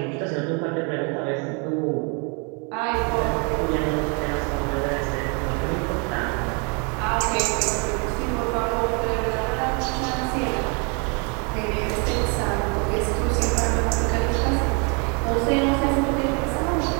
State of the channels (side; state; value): left; quieter; 34.8 dB